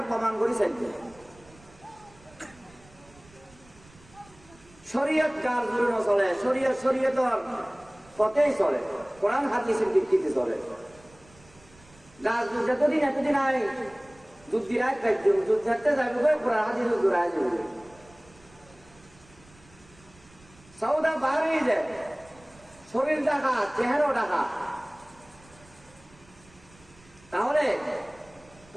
প্রমাণ করেছেন শরীয়ত কার জন্য চলে শরীয়তর পথেই চলে কোরআন হাদিসের ভিত্তিতে চলে যতদিন এতদিন আয় যুদ্ধ যুদ্ধে যাবে কোরআন হাদিস জোড়ায় যাবে সৌদা বার হয়ে যায় শরীর ডাকা চেহারাও ডাকা তাহলে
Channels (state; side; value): noise; right; rumble, 26 dB below the sound